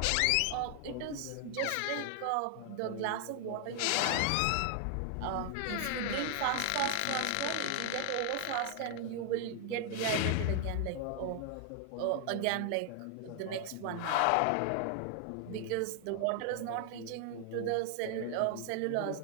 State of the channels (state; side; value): different; both; correlation 0.00